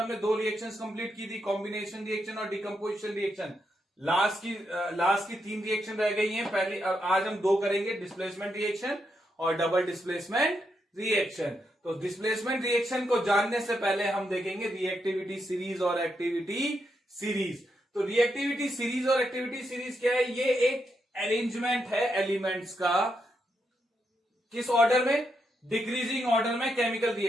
हमने दो रिएक्शंस कंप्लीट की थी, कॉम्बिनेशन रिएक्शन और डिकम्पोजिशन रिएक्शन। लास्ट की तीन रिएक्शन रह गई हैं। पहले आज हम दो करेंगे, डिस्प्लेसमेंट रिएक्शन और डबल डिस्प्लेसमेंट रिएक्शन। तो डिस्प्लेसमेंट रिएक्शन को जानने से पहले हम देखेंगे रिएक्टिविटी सीरीज और एक्टिविटी सीरीज। तो रिएक्टिविटी सीरीज और एक्टिविटी सीरीज क्या है, ये एक अरेंजमेंट है एलिमेंट्स का, किस ऑर्डर में, डिक्रीजिंग ऑर्डर में केमिकल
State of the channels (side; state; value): both; normal; correlation 0.82